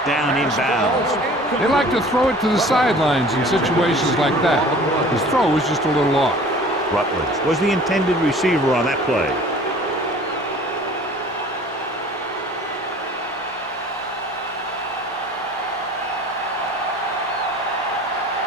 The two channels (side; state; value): both; normal; correlation 0.47